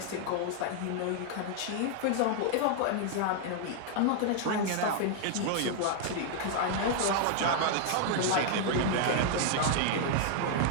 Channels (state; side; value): different; both; correlation 0.00